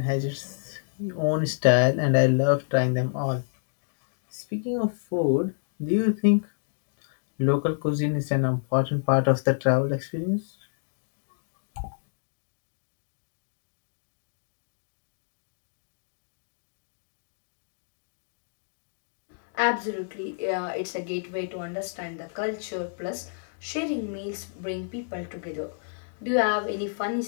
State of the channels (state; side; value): silent; right; digital silence